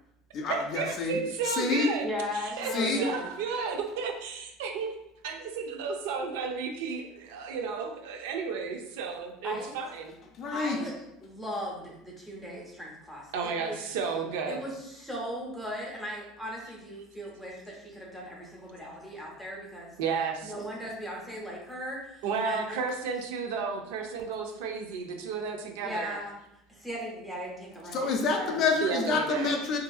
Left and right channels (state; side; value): normal; both; correlation 0.31